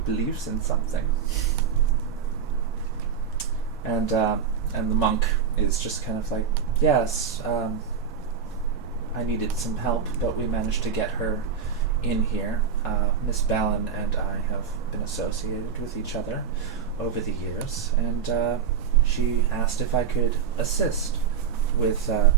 believes in something. And the monk is just kind of like, yes, I needed some help, but we managed to get her in here. Miss Balin and I have been associated with each other over the years, and she asked if I could assist with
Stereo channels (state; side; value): quieter; left; 7.0 dB